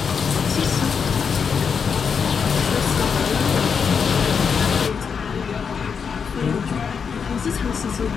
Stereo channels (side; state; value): right; quieter; 6.3 dB